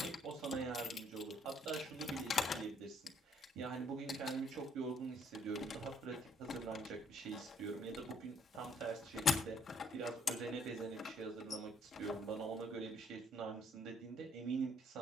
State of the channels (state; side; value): normal; both; correlation 0.66